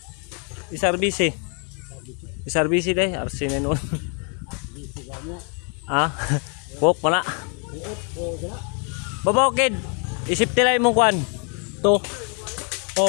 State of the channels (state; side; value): quieter; right; 38.8 dB